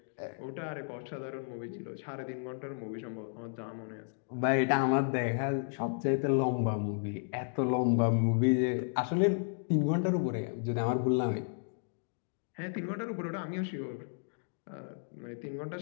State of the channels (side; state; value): right; silent; digital silence